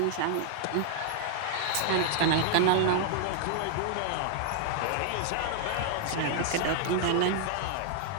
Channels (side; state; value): both; different; correlation 0.00